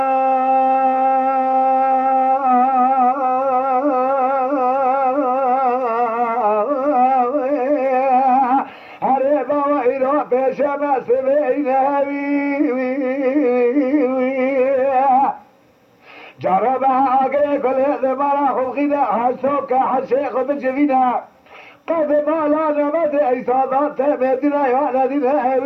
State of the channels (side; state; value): both; identical; correlation 1.00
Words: شمس جرب عقل كل هذا مرا خلقنا حسوك حشيخ بجفينا قد ما لا نمد إيصادات مدينة يا ندينا